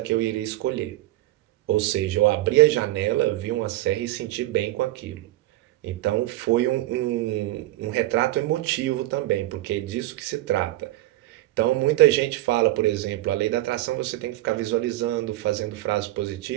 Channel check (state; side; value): quieter; left; 16.6 dB